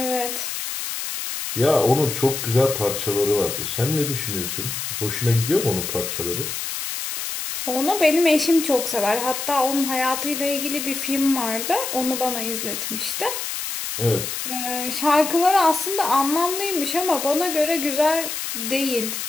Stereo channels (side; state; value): left; noise; hiss, 5 dB below the sound